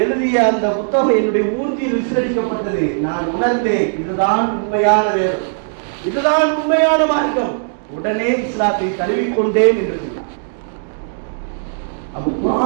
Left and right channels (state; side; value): silent; left; digital silence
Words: எழுதிய அந்த புத்தகம் என்னுடைய மூஞ்சியில் விசிலடிக்கப்பட்டது. நான் உணர்ந்தேன், இதுதான் உண்மையான வேதம், இதுதான் உண்மையான மார்க்கம். உடனே இஸ்லாத்தை தழுவிக்கொண்டேன் என்று சொன்னார். அப்ப